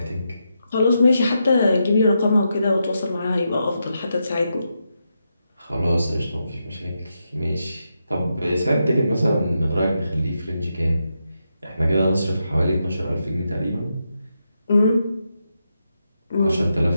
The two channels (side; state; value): both; inverted; correlation -0.84